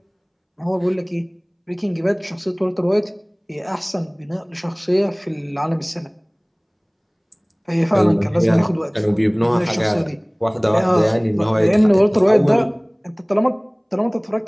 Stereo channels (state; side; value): identical; both; correlation 1.00